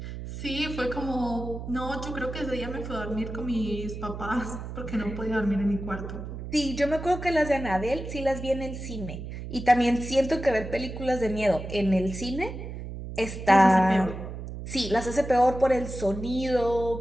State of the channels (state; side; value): noise; right; hum, 8 dB below the sound